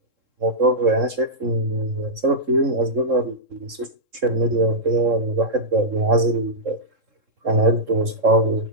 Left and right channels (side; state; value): left; late; 3.7 ms